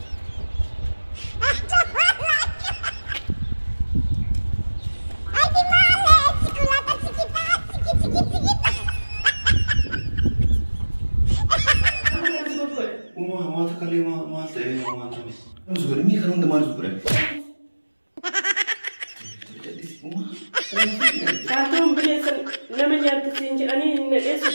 ما تكلم ما تقول ما تقول مزبور مي خلون دمار مزبور كاتم بليسن لما جات تسينج أني نلقي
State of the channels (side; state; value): both; inverted; correlation -1.00